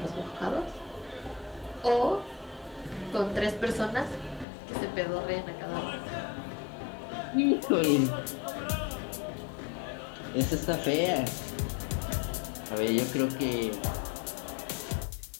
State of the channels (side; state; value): right; drops out; at 4.5 s